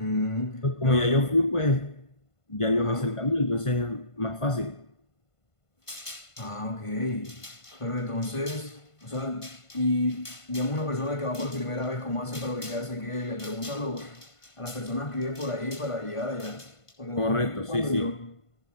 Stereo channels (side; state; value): right; late; 1.5 ms